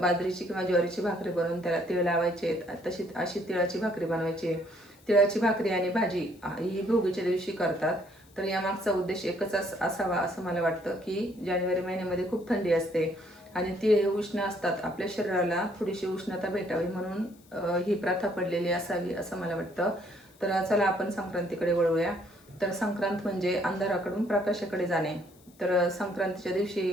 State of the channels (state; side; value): noise; left; hiss, 28 dB below the sound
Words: बाजरीची किंवा ज्वारीची भाकरी बनवून त्याला तीळ लावायचे। तशी अशी तिळाची भाकरी बनवायची आहे। तिळाची भाकरी आणि भाजी ही भोगीच्या दिवशी करतात। तर यामागचा उद्देश एकच असावा असं मला वाटतं की जानेवारी महिन्यामध्ये खूप थंडी असते आणि तीळ हे उष्ण असतात, आपल्या शरीराला थोडीशी उष्णता भेटावी म्हणून ही प्रथा पडलेली असावी असं मला वाटतं। तर चला आपण संक्रांतीकडे वळूया। तर संक्रांत म्हणजे अंधाराकडून प्रकाशाकडे जाणे। तर संक्रांतीच्या दिवशी